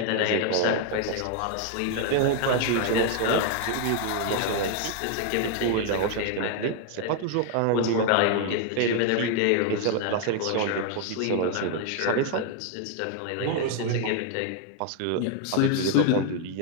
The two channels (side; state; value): both; different; correlation 0.00